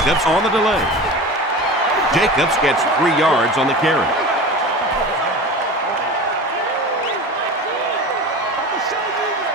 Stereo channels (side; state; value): both; normal; correlation 0.32